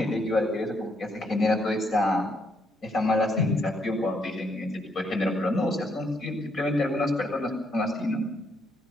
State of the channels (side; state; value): both; normal; correlation 0.74